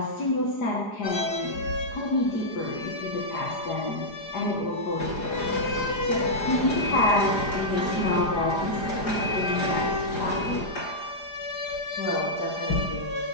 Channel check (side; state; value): right; late; 4.9 ms